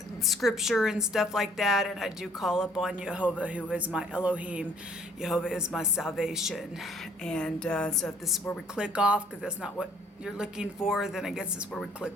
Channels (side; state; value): both; normal; correlation 0.60